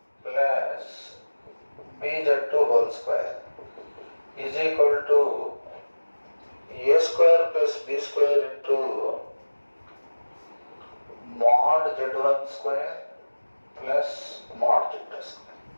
plus BZ2 whole square is equal to A square plus B square into mod Z1 square plus mod Z2 square.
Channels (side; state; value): both; inverted; correlation -1.00